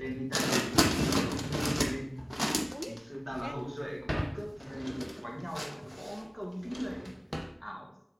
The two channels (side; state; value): both; identical; correlation 1.00